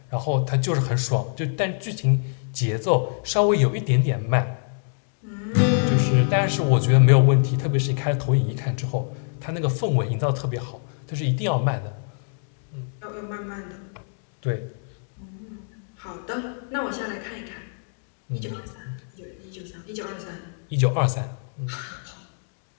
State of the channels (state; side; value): silent; right; digital silence